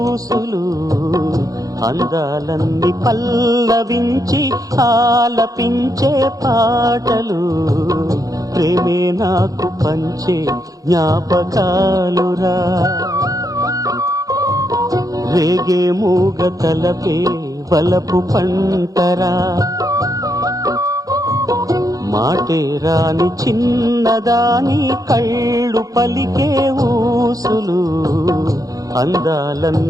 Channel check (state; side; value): late; left; 0.17 ms